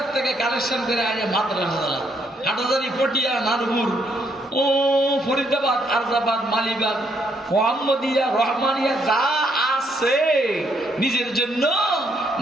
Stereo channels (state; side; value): normal; both; correlation 0.73